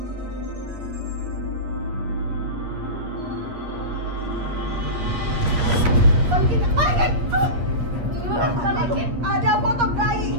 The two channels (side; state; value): left; late; 8.4 ms